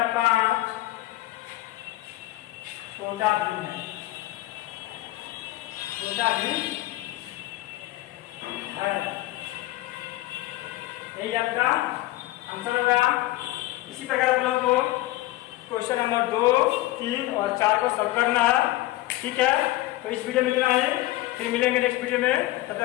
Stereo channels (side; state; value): right; quieter; 17.5 dB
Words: छोटा भिन्न है, छोटा भिन्न है। यही आपका आंसर होगा। इसी प्रकार आप लोगों को क्वेश्चन नंबर 2, 3 और 4 को सॉल्व करना है, ठीक है। तो इस वीडियो में इतना है, फिर मिलेंगे नेक्स्ट वीडियो में। तब